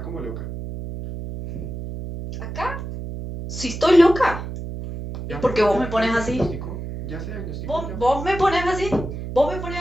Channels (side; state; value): right; noise; hum, 8 dB below the sound